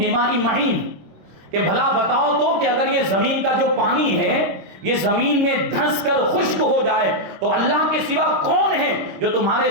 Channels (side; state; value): left; late; 26 ms